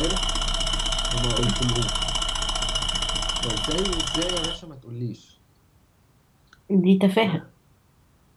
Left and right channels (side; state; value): both; identical; correlation 1.00